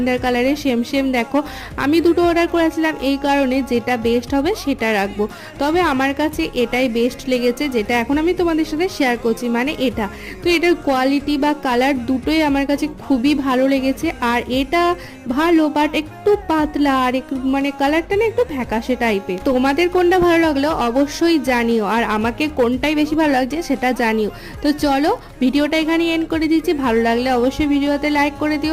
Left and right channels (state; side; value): identical; both; correlation 1.00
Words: কালারের সেম সেম। দেখো, আমি দুটো অর্ডার করেছিলাম এই কারণে যেটা বেস্ট হবে সেটা রাখবো। তবে আমার কাছে এটাই বেস্ট লেগেছে, যেটা এখন আমি তোমাদের সাথে শেয়ার করছি, মানে এটা। তো এটার কোয়ালিটি বা কালার দুটোই আমার কাছে খুবই ভালো লেগেছে। আর এটা ভালো, বাট একটু পাতলা, আর একটু মানে কালারটা না একটু ফ্যাকাশে টাইপের। তোমাদের কোনটা ভালো লাগলো অবশ্যই জানিও, আর আমাকে কোনটাই বেশি ভালো লাগছে সেটা জানিও। তো চলো, ভিডিওটা এখানে এন্ড করে দিচ্ছি। ভালো লাগলে অবশ্যই ভিডিওতে লাইক করে